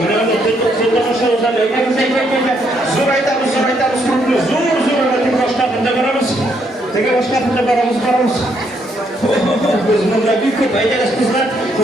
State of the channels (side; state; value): both; normal; correlation 0.73